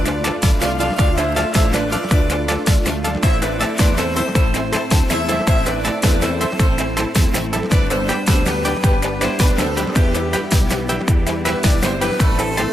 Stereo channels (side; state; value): both; normal; correlation 0.88